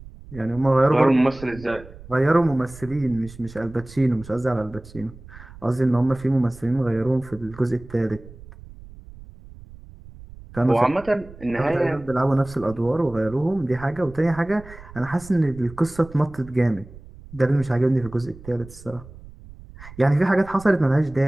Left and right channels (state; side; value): noise; right; rumble, 18 dB below the sound